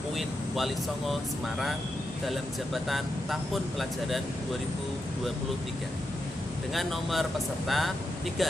UIN Wali Songo Semarang dalam jabatan tahun pelajaran 2023 dengan nomor peserta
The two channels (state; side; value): normal; both; correlation 0.85